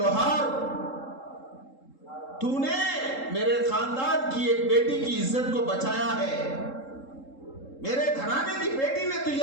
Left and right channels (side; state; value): right; late; 3.7 ms